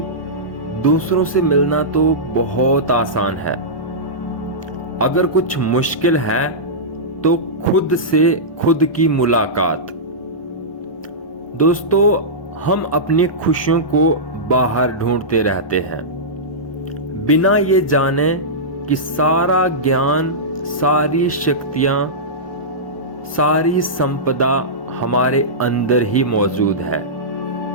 दूसरों से मिलना तो बहुत आसान है। अगर कुछ मुश्किल है तो खुद से खुद की मुलाकात। दोस्तों, हम अपनी खुशियों को बाहर ढूंढते रहते हैं, बिना ये जाने कि सारा ज्ञान, सारी शक्तियां, सारी संपदा हमारे अंदर ही मौजूद है।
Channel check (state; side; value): late; right; 1.1 ms